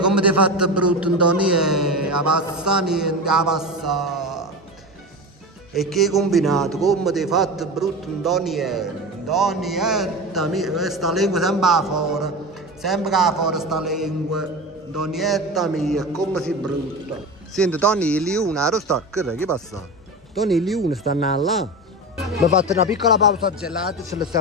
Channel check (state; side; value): normal; both; correlation 0.26